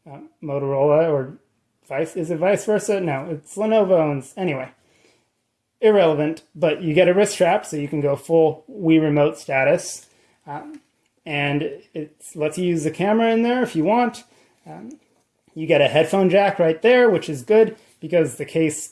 Motorola, or is it vice versa? No, it's Lenovo owns, anyway. Irrelevant, but you get a wrist strap so you can go full Wii Remote status. And it lets you use the camera in there if you want. You get a headphone jack right there, which is good because the case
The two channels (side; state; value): both; identical; correlation 1.00